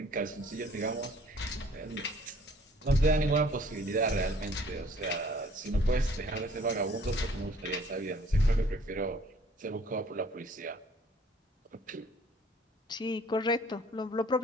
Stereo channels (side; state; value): both; normal; correlation 0.56